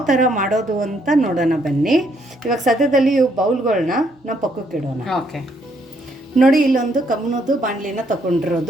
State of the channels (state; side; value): normal; both; correlation 0.71